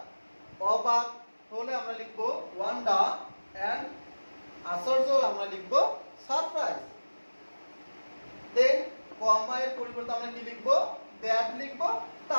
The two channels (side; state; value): both; inverted; correlation -1.00